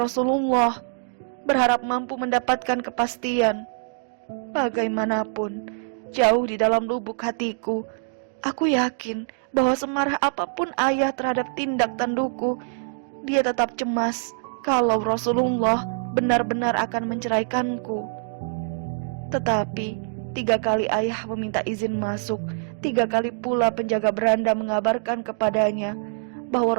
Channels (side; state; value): left; silent; digital silence